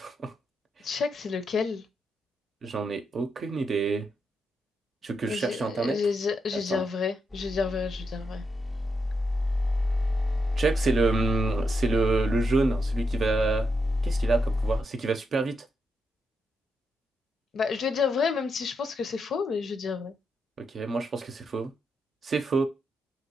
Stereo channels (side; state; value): both; normal; correlation 0.83